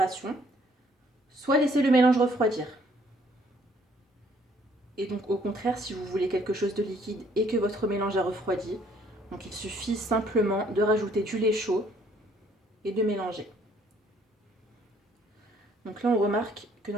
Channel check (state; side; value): normal; both; correlation 0.63